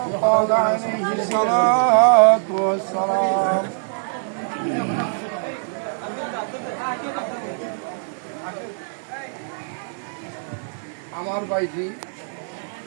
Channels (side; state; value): left; silent; 61 dB below the other